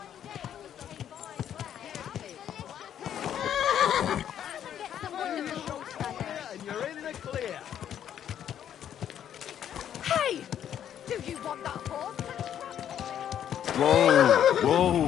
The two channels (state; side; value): quieter; right; 9.9 dB